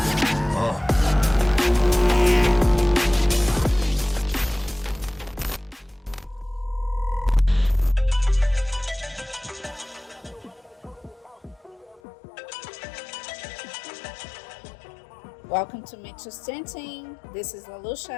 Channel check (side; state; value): right; drops out; at 12.0 s